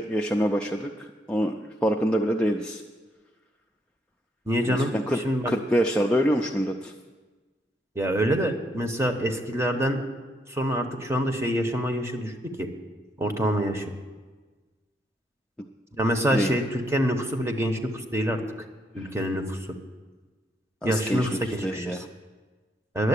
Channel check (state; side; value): normal; both; correlation 0.75